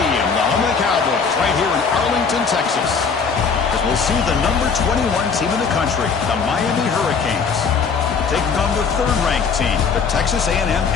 the home of the Cowboys, right here in Arlington, Texas. As we'll see the number 21 team in the country, the Miami Hurricanes, taking on the third-ranked team, the Texas A&M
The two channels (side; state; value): right; quieter; 5.6 dB